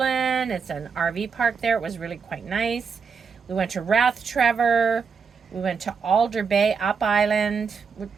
It's an RV park there. It was really quite nice. We went to Rathtrevor. We went to Alder Bay, up island.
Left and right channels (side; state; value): left; quieter; 5.7 dB